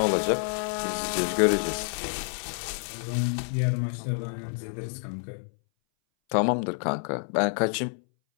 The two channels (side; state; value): right; silent; 59 dB below the other